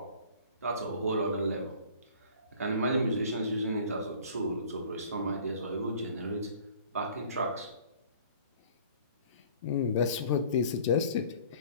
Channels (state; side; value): inverted; both; correlation -0.50